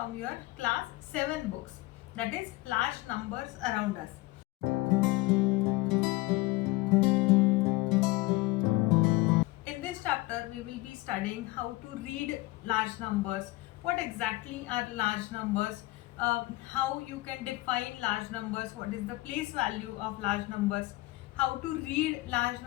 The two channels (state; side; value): quieter; right; 20.7 dB